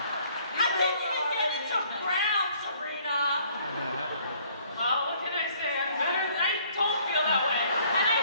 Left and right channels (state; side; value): inverted; both; correlation -0.60